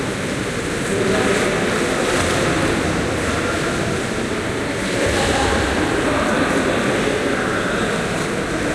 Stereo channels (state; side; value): identical; both; correlation 1.00